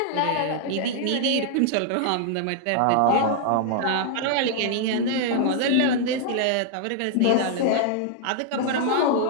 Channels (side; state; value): both; different; correlation 0.00